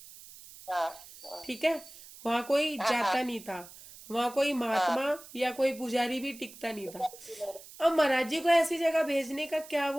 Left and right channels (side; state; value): right; noise; hiss, 18 dB below the sound